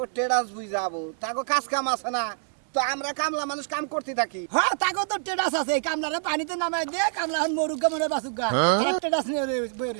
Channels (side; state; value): left; silent; digital silence